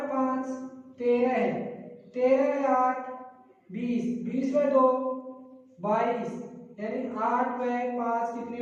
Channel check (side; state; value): both; identical; correlation 1.00